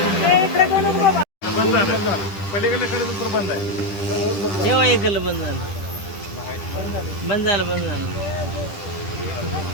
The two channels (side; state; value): right; late; 10 ms